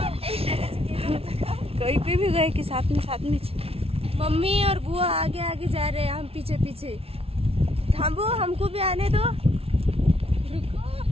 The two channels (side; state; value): left; late; 0.28 ms